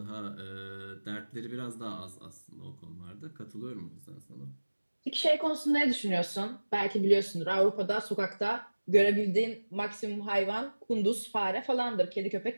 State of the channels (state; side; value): inverted; both; correlation -1.00